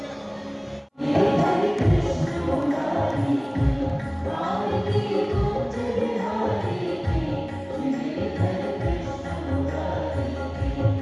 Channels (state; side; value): identical; both; correlation 1.00